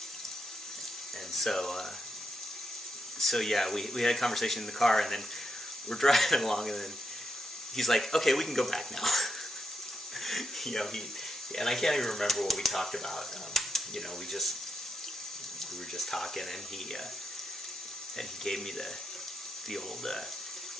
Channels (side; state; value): both; normal; correlation 0.82